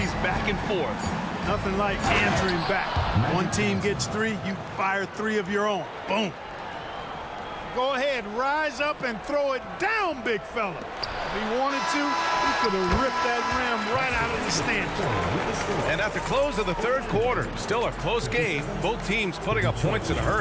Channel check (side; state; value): both; identical; correlation 1.00